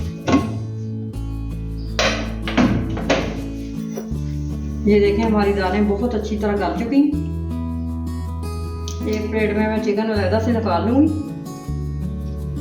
ये देखें हमारी दालें बहुत अच्छी तरह गल चुकी हैं। एक प्लेट में मैं चिकन अलग से निकाल लूंगी।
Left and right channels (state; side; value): identical; both; correlation 1.00